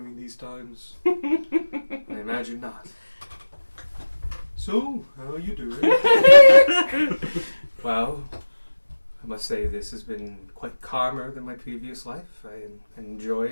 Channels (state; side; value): inverted; both; correlation -1.00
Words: these times. I imagine not. So, how are you doing? Well, I must say this has been quite calmer than my previous life. I enjoy